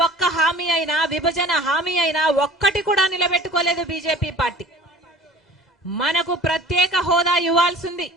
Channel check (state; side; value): normal; both; correlation 0.45